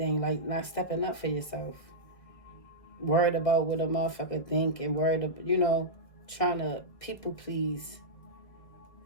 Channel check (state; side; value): late; right; 1.6 ms